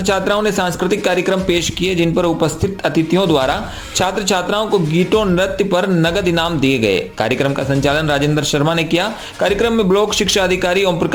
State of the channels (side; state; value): both; identical; correlation 1.00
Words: छात्राओं ने सांस्कृतिक कार्यक्रम पेश किए, जिन पर उपस्थित अतिथियों द्वारा छात्र छात्राओं को गीतों नृत्य पर नगद इनाम दिए गए। कार्यक्रम का संचालन राजेंद्र शर्मा ने किया। कार्यक्रम में ब्लॉक शिक्षा अधिकारी ओम